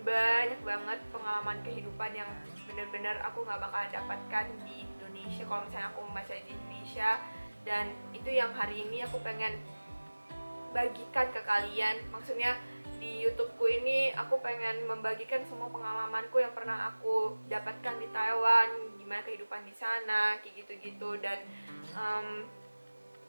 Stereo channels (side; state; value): both; inverted; correlation -1.00